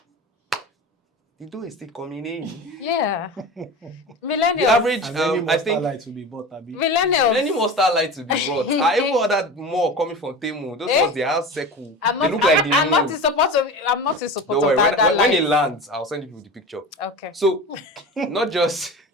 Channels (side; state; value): both; normal; correlation 0.31